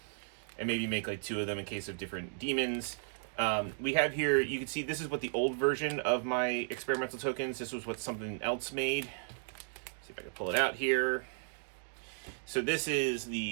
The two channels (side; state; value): left; silent; digital silence